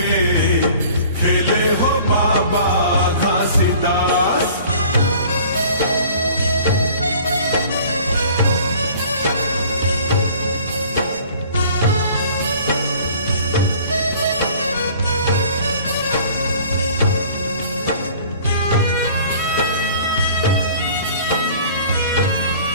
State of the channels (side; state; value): both; inverted; correlation -0.49